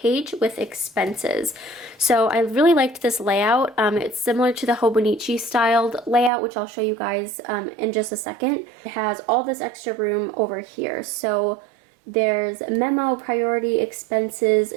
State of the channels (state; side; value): drops out; left; at 6.3 s